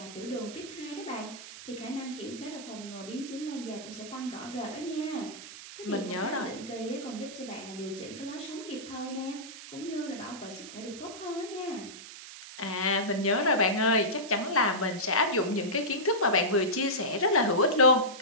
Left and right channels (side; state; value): right; noise; hiss, 13 dB below the sound